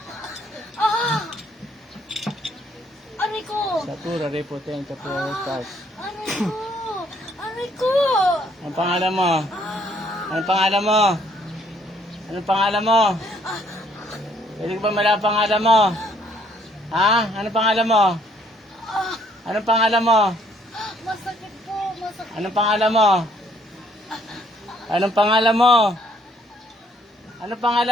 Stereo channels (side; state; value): both; normal; correlation 0.66